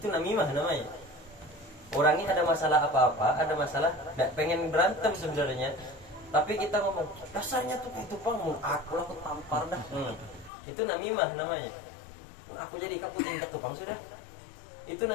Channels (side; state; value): right; drops out; at 10.5 s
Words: namimah namanya. Orang ini ada masalah apa-apa, ada masalah, tidak pengen berantem sebenarnya, tapi kita ngomong, dasarnya tuh kayak tupang, aku tampar dah. Itu namimah namanya. Aku jadi kamu tinjak tupang sudah. Itu